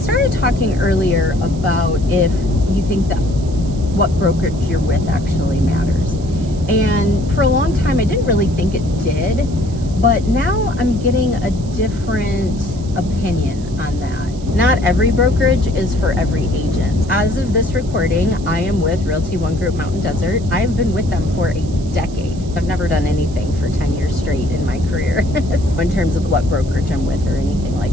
started talking earlier about if you think that what brokerage you're with actually matters. And for a long time, I didn't really think it did, but now I'm getting a different opinion on that. Not every brokerage is for every agent. As of this recording, I am with Realty One Group Mountain Desert. I've been with them for a decade. I've never done anything for 10 years straight in my career in terms of what brokerage I'm with or anything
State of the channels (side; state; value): right; noise; hiss, 21 dB below the sound